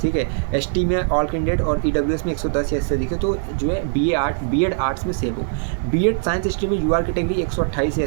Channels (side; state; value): left; silent; digital silence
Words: ठीक है। ST में ऑल कैंडिडेट और EWS में 110 या इससे अधिक है तो जो है बीएड आर्ट्स में सेफ हो। बीएड साइंस स्ट्रीम में UR कैटेगरी 128 या